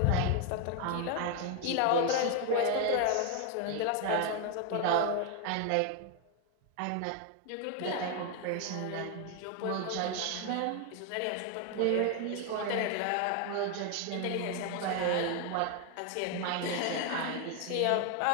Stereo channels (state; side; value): different; both; correlation 0.01